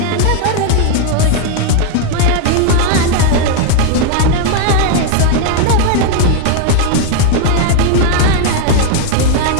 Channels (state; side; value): different; both; correlation 0.01